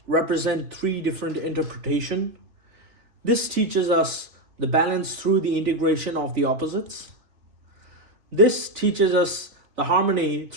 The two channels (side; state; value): left; late; 3.2 ms